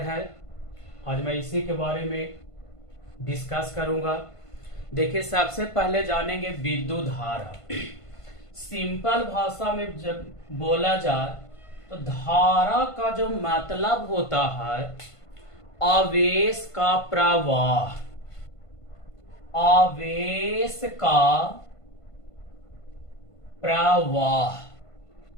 आज मैं इसी के बारे में डिस्कस करूँगा। देखिए, सबसे पहले जानेंगे विद्युत धारा। सिंपल भाषा में जब बोला जाए तो धारा का जो मतलब होता है आवेश का प्रवाह। आवेश का प्रवाह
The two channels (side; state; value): right; late; 1.5 ms